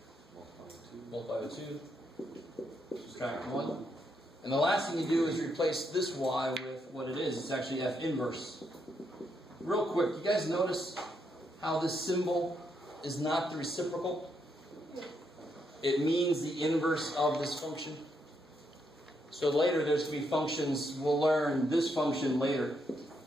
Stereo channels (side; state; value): both; normal; correlation 0.78